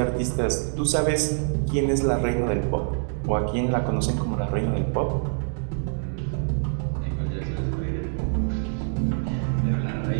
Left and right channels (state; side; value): silent; left; digital silence